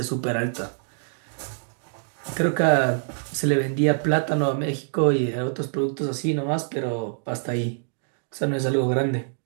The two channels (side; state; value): left; silent; digital silence